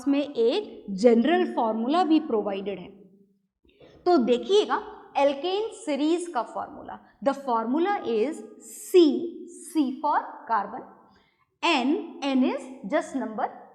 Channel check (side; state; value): both; identical; correlation 1.00